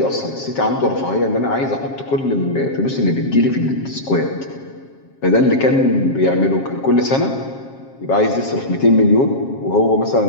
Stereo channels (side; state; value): right; late; 7.4 ms